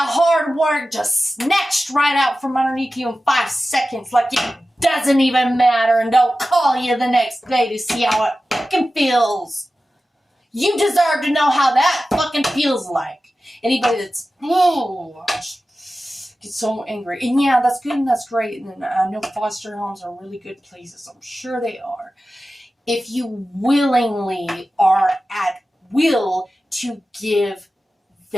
hard work just snatched right out from underneath you in 5 seconds, like it doesn't even matter, and don't call you the next day to see how it fucking feels. You deserve to know how that fucking feels like. Anybody that's, get so angry. And yeah, that's good and that's great. And I know foster homes are really good places. I'm sure they are. If you willingly are at will to give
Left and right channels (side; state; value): both; normal; correlation 0.94